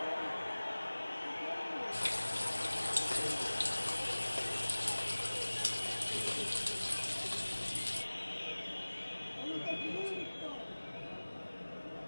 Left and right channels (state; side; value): inverted; both; correlation -1.00